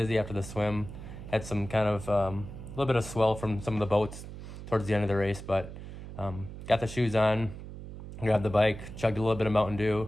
after the swim. Had some kind of a little bit of swell from some of the boats towards the end of the race, but got the shoes on, grabbed the bike, chugged a little bit of Mountain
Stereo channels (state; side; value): noise; right; hum, 11 dB below the sound